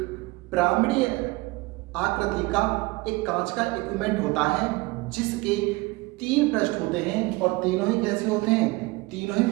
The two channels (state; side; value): quieter; left; 23.2 dB